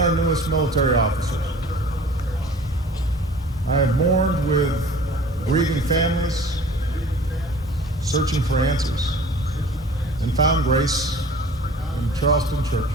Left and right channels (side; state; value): both; normal; correlation 0.46